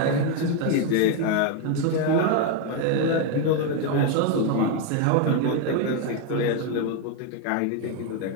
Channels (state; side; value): different; both; correlation 0.01